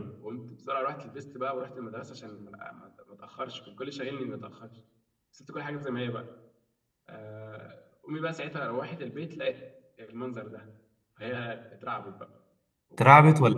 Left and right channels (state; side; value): identical; both; correlation 1.00